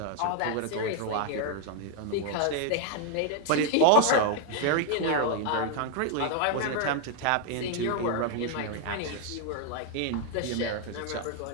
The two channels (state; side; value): different; both; correlation 0.01